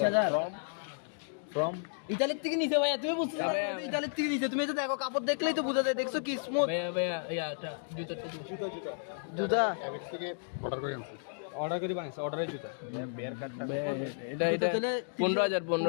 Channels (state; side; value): silent; right; digital silence